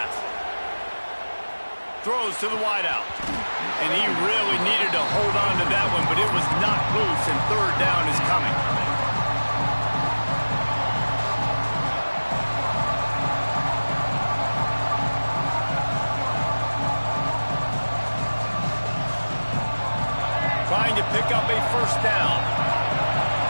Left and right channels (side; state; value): both; inverted; correlation -1.00